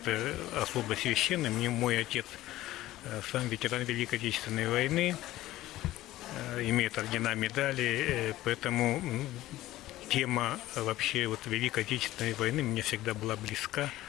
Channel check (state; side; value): quieter; right; 15.8 dB